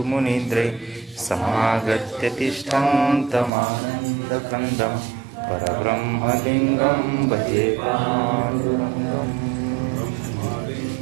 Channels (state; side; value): drops out; left; at 3.5 s